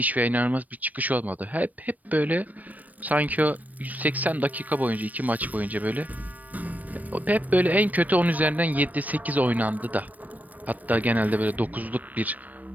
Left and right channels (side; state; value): left; late; 0.077 ms